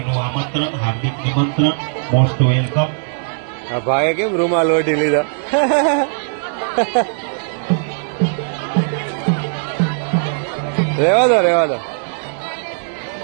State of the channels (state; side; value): silent; left; 66 dB below the other